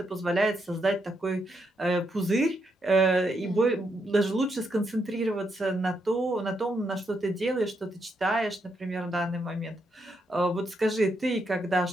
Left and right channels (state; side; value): normal; both; correlation 0.79